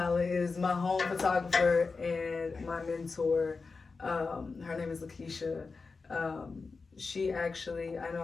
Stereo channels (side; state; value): right; quieter; 4.4 dB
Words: is my home photographer and my mentor. Her name is Lakeisha. She actually, I know